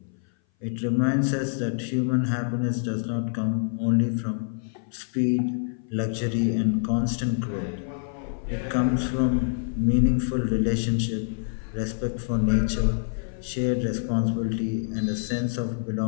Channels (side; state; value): right; silent; 58 dB below the other